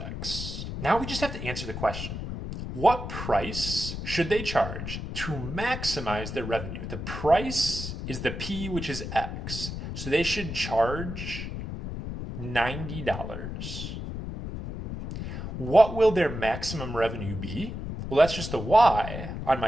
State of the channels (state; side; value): noise; left; rumble, 6 dB below the sound